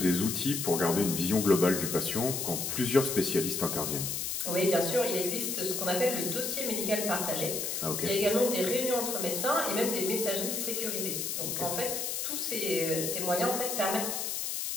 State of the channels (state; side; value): noise; left; hiss, 2 dB below the sound